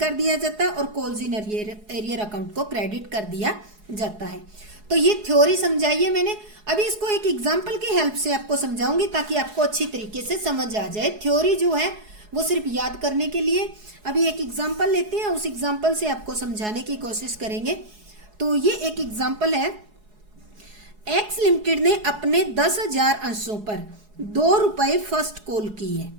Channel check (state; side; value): late; left; 4.7 ms